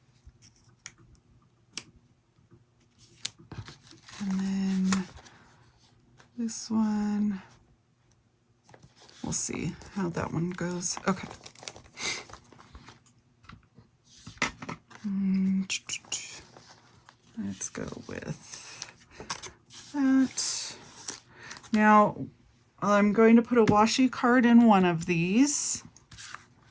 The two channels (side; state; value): both; identical; correlation 1.00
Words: And then this one, we'll see how that one goes. Okay. Let's go with that. Now, I'm going to put a washi card in one of these.